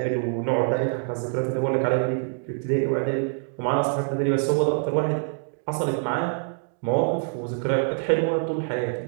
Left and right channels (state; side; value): silent; left; digital silence